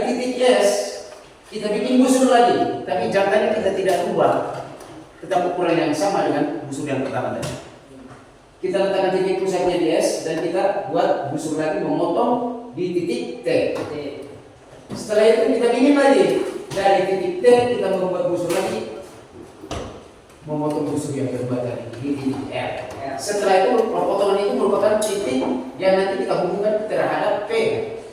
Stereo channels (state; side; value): identical; both; correlation 1.00